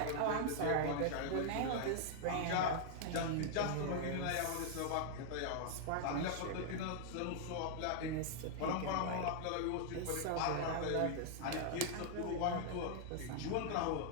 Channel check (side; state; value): both; different; correlation -0.01